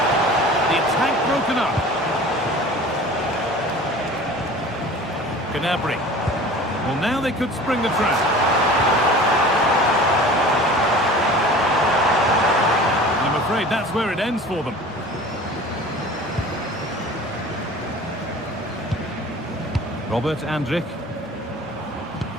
The attack broken up. Gnabry. Well, now they could spring the trap. And I'm afraid that's where it ends for them. Robert Andrick.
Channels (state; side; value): normal; both; correlation 0.42